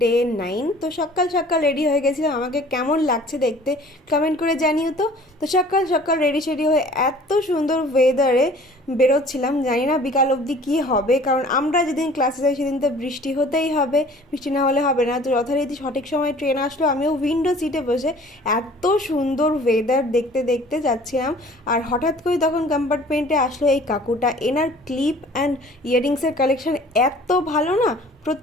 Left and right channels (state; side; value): normal; both; correlation 0.50